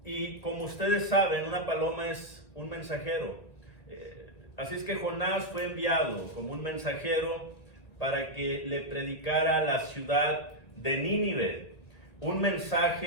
Y como ustedes saben, una paloma es un mensajero. Así es que Jonás fue enviado como un mensajero para que le predicara a la ciudad de Nínive un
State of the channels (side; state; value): right; late; 1.9 ms